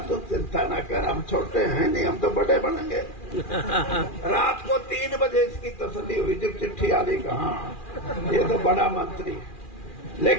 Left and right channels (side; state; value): right; late; 2.4 ms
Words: तुम चिंता ना कर, हम छोटे हैं नहीं, हम तो बड़े बनेंगे। रात को 3 बजे इसकी तसल्ली हुई जब चिट्ठी आ गई, कहा ये तो बड़ा मंत्री है।